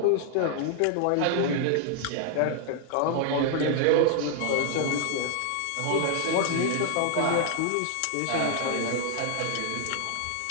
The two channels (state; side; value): different; both; correlation 0.00